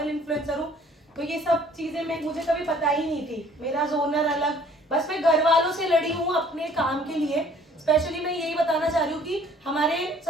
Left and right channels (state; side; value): normal; both; correlation 0.56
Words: इन्फ्लुएंसर हूँ, तो ये सब चीजें मुझे कभी पता ही नहीं थी। मेरा जोनर अलग, बस मैं घर वालों से लड़ी हूँ अपने काम के लिए। स्पेशली मैं यही बताना चाह रही हूँ कि हमारे